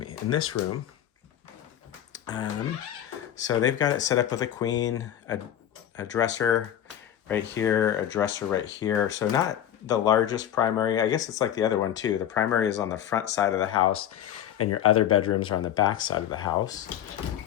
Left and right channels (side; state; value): right; quieter; 10.8 dB